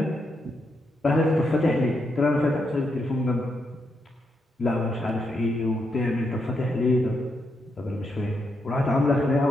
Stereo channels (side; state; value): both; normal; correlation 0.81